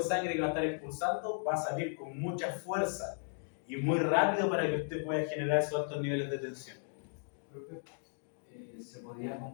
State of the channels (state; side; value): silent; right; 54 dB below the other